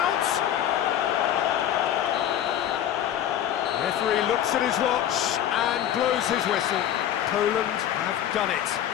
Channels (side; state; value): right; quieter; 10.8 dB